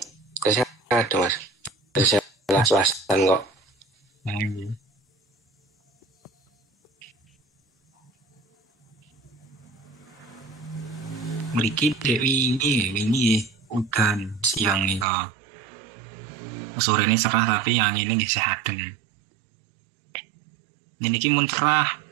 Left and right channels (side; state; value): left; drops out; at 15.1 s